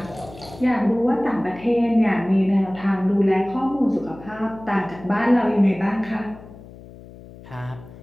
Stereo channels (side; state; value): left; noise; hum, 19 dB below the sound